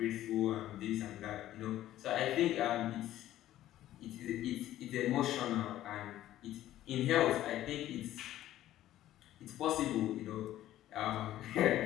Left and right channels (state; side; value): quieter; right; 13.5 dB